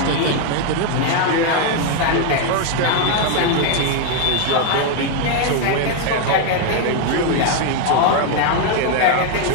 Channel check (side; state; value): both; different; correlation 0.01